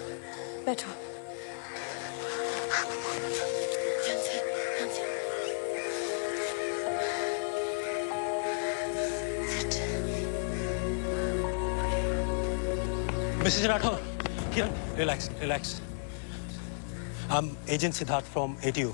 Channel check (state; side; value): silent; right; 56 dB below the other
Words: बैठो। Mrs Rathore, Kiran, relax relax. I'm agent Siddharth from ATU।